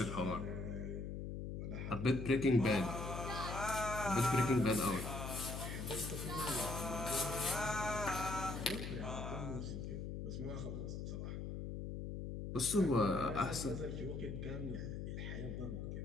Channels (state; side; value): noise; left; hum, 5 dB below the sound